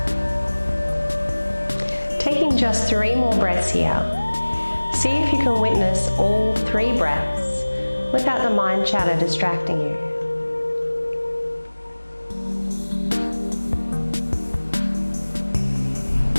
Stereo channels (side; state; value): both; inverted; correlation -1.00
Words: Taking just 3 more breaths here. See if you can witness all 3 breaths without the mind chatter distracting you.